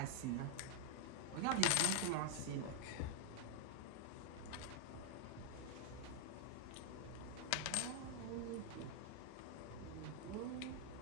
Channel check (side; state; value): both; different; correlation 0.00